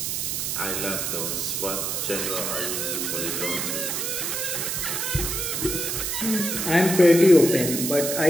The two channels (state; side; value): noise; right; hiss, 1 dB below the sound